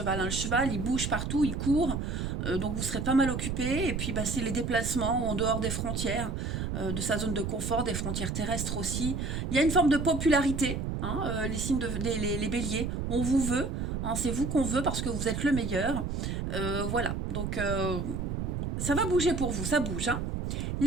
hein. Le cheval, il bouge partout, il court, donc vous serez pas mal occupé. Et puis, ben, c'est les déplacements en dehors des frontières, de sa zone de confort, des frontières terrestres aussi. Il y a une forme de popularité, hein, les signes les béliers, on vous veut, hein, c'est vous qu'on veut parce que vous êtes le meilleur. Voilà, donc ça va bouger pour vous, ça bouge, hein.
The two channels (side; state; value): right; noise; rumble, 3 dB below the sound